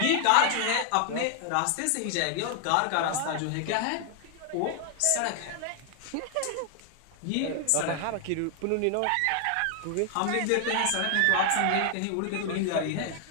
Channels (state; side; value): different; both; correlation 0.00